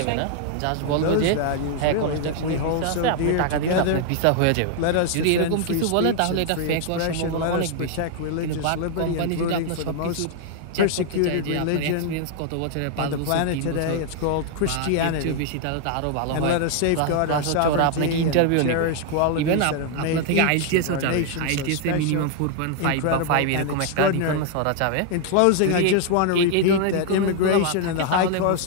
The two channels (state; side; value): different; both; correlation 0.00